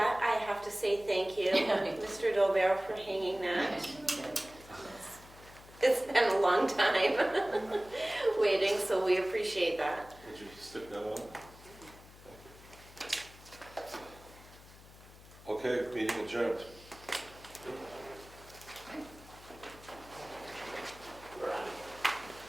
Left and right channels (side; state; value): left; noise; hum, 20 dB below the sound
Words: I have to say thank you, Mr. Dolbear, for hanging that. It's been a long time waiting, so we appreciate that. Would you stick that on? Okay, meeting adjourned.